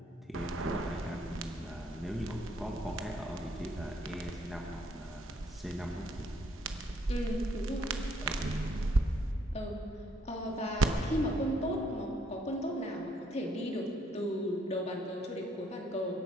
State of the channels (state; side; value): normal; both; correlation 0.69